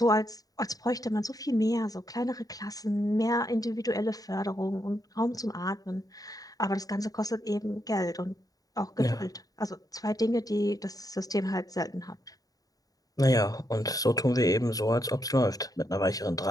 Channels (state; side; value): late; right; 0.18 ms